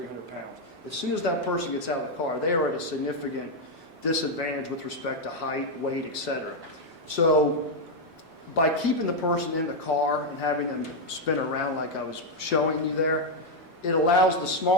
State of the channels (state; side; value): normal; both; correlation 0.01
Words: pounds. As soon as that person gets out of the car, they are at a significant disadvantage with respect to height, weight, etc. So by keeping the person in the car and having them spin around like I was showing you there, it allows the